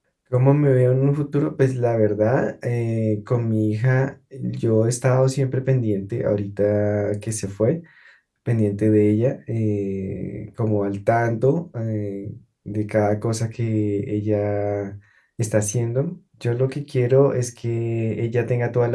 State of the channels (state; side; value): identical; both; correlation 1.00